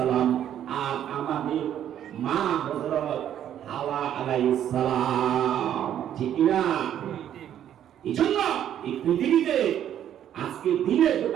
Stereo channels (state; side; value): quieter; left; 10.4 dB